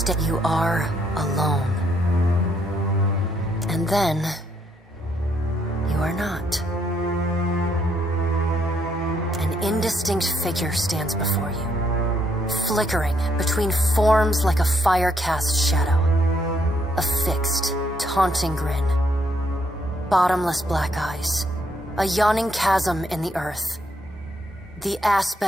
are alone. And then you are not. An indistinct figure stands before you, flickering between forms like a fire-cast shadow. A fixed, taunting grin. Bottomless black eyes. A yawning chasm in the earth. The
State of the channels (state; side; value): normal; both; correlation 0.73